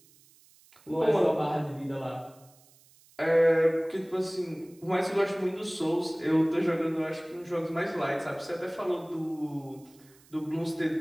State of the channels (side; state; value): right; noise; hiss, 28 dB below the sound